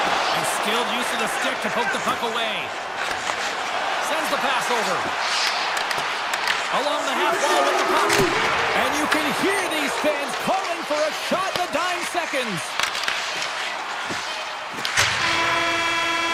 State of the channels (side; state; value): both; identical; correlation 1.00